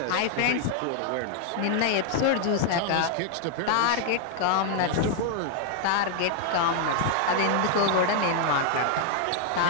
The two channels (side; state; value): both; different; correlation 0.00